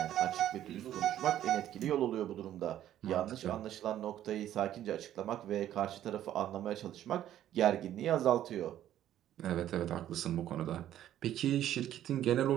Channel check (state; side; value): quieter; left; 11.9 dB